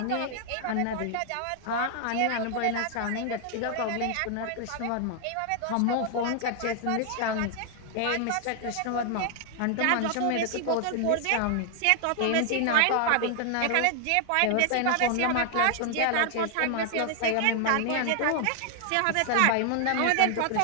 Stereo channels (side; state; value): both; different; correlation 0.00